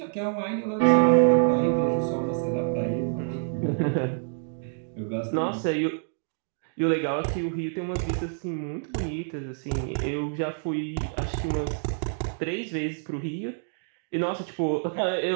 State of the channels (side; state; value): left; silent; digital silence